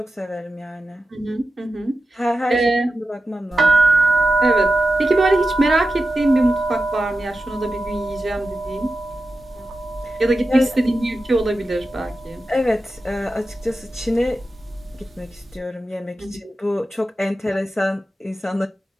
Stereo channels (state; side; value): normal; both; correlation 0.92